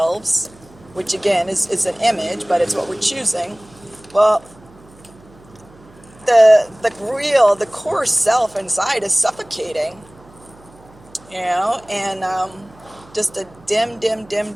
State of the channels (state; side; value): noise; right; hum, 25 dB below the sound